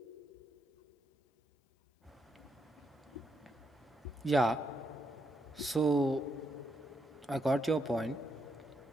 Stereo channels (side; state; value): both; normal; correlation 0.79